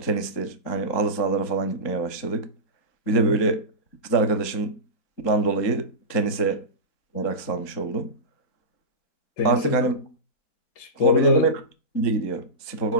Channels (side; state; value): right; late; 3.8 ms